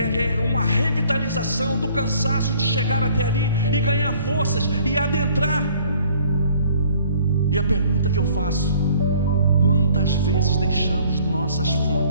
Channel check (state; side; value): inverted; both; correlation -0.56